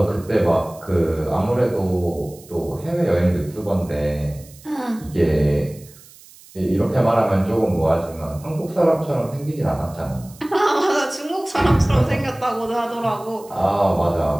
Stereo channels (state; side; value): noise; right; hiss, 23 dB below the sound